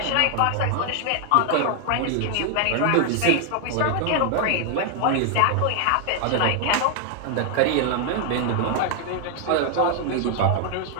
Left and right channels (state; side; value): different; both; correlation 0.00